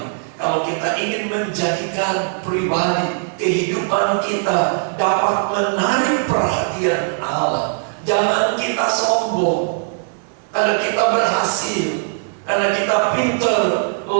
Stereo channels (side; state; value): left; silent; 66 dB below the other